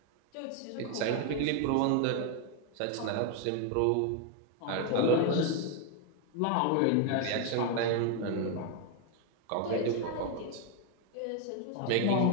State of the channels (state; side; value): different; both; correlation 0.01